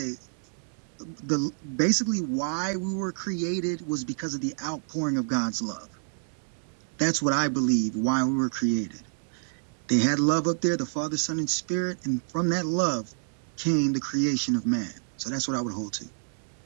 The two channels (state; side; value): silent; left; 59 dB below the other